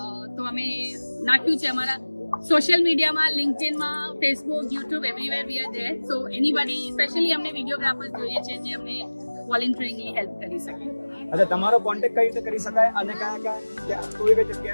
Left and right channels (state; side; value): inverted; both; correlation -1.00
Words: તો અમે નાખ્યું છે અમારા સોશિયલ મીડિયામાં, લિંક્ડઇનમાં, Facebook, YouTube, everywhere we are there. So anybody specially અમને વિડીયોગ્રાફર્સ જોઈએ છે જે અમને વોલેન્ટિયરિંગની હેલ્પ કરી શકે. અચ્છા, તમારો કોન્ટેક્ટ કઈ રીતે કરી શકાય અને કઈ